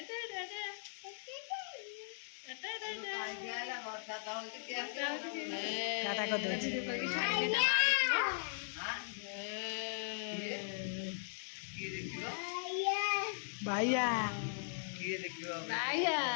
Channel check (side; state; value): right; silent; digital silence